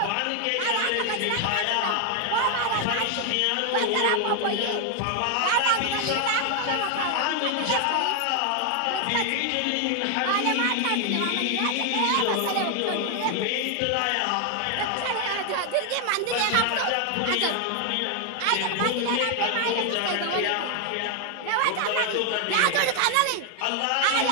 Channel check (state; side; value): different; both; correlation 0.01